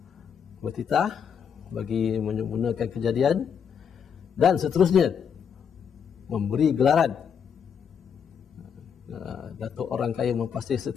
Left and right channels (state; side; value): quieter; right; 7.4 dB